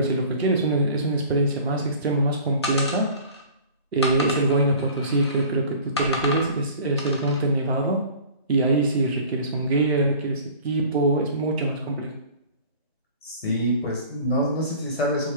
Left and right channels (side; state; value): both; inverted; correlation -0.45